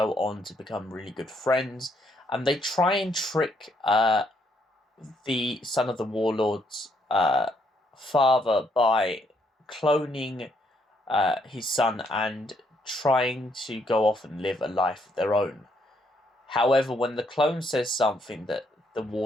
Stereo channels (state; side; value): normal; both; correlation 0.72